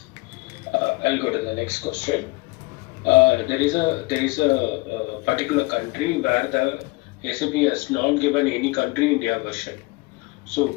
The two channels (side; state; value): right; quieter; 23.4 dB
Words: I'll go to the next question. There is a particular country where the SAP has not given any country India version. So